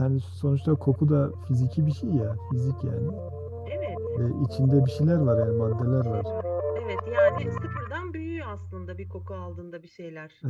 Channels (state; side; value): identical; both; correlation 1.00